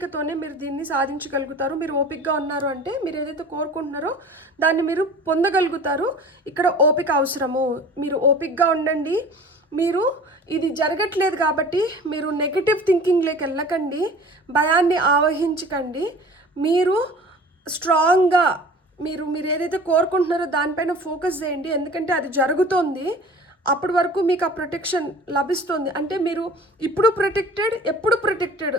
మీరు దీన్ని సాధించగలుగుతారు. మీరు ఓపికగా ఉన్నారు అంటే మీరు ఏదైతే కోరుకుంటున్నారో దాన్ని మీరు పొందగలుగుతారు. ఇక్కడ ఓపిక అవసరము, మీరు ఓపికగా ఉండండి. మీరు ఇది జరగట్లేదు కాబట్టి మీరు నెగిటివ్ థింకింగ్లోకి వెళ్ళకండి, భయాన్ని ఆవహించకండి. మీరు స్ట్రాంగ్గా మీరు ఏదైతే కోరుకుంటున్నారో దానిపైన ఫోకస్ చేయండి, ఎందుకంటే అది జరుగుతోంది. అప్పటి వరకు మీకు ఆ ప్రొటెక్షన్ లభిస్తుంది. అంటే మీరు ఇప్పుడు ప్రొటెక్టెడ్, ఎప్పుడు ప్రొటెక్టెడ్,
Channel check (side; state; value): both; normal; correlation 0.43